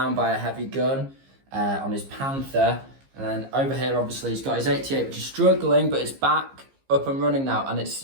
by a heavy gun on his Panther. And then over here, obviously, he's got his 88, which is struggling, but it's back up and running now. And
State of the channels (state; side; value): late; left; 15 ms